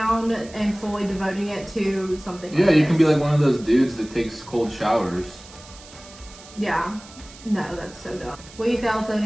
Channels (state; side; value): noise; right; hiss, 20 dB below the sound